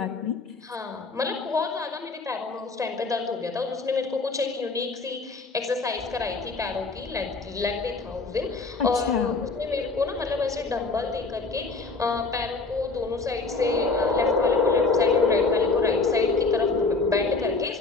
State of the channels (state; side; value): quieter; right; 4.0 dB